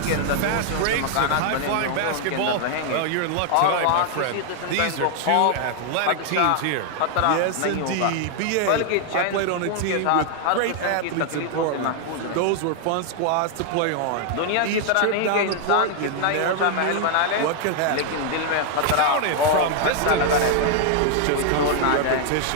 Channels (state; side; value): different; both; correlation 0.00